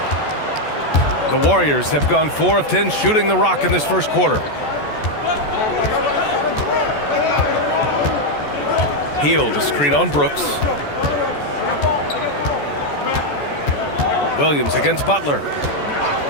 The Warriors have gone 4 of 10 shooting the rock in this first quarter. Hield a screen on Brooks. Williams against Butler.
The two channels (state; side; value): late; right; 14 ms